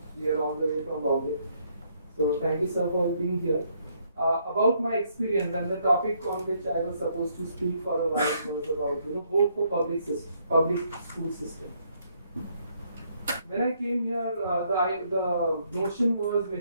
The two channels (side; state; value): both; inverted; correlation -0.71